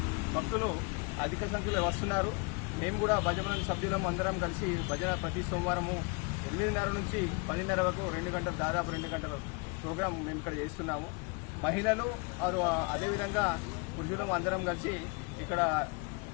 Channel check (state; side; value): quieter; right; 31.2 dB